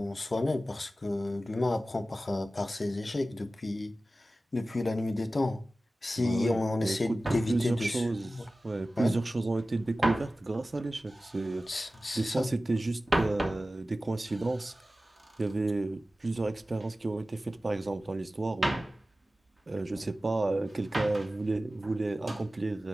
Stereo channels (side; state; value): both; normal; correlation 0.95